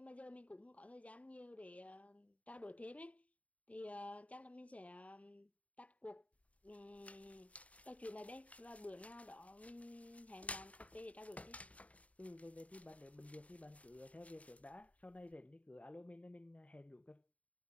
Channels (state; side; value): late; right; 0.067 ms